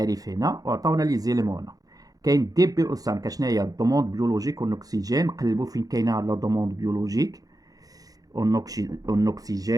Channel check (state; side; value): late; left; 0.18 ms